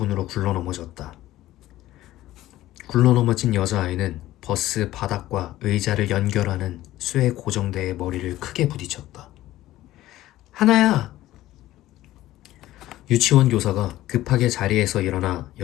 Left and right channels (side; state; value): right; quieter; 15.3 dB